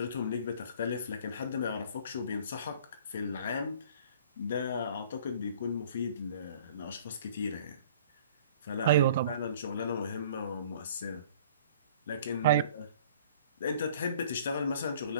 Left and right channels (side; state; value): both; inverted; correlation -0.51